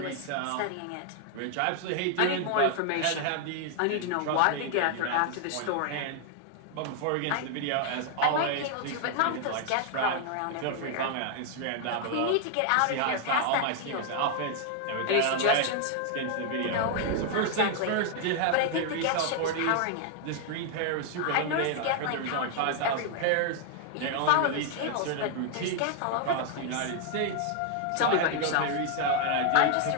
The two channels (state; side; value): different; both; correlation 0.00